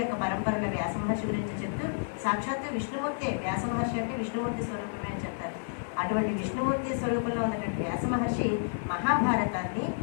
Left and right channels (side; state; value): right; silent; digital silence